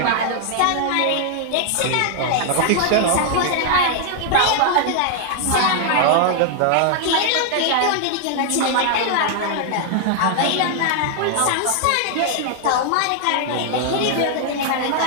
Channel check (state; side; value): different; both; correlation 0.00